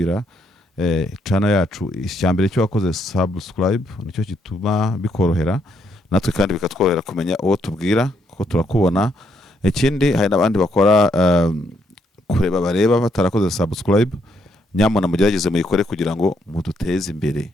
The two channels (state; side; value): normal; both; correlation 0.74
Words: channel yacu. Icyambere cyo wakoze subscribe nicyo gituma bikorohera natwe kandi bikatworohera kumenya uwo tubwira kuko turakubona. Ikindi hari n'abandi bakora kureba bareba batarakoze subscribe, nyamona mugerageze muyikore kugira ngo muduteze imbere.